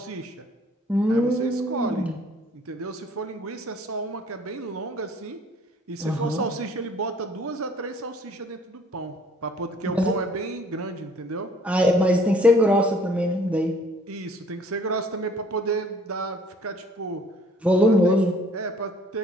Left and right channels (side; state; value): both; normal; correlation 0.57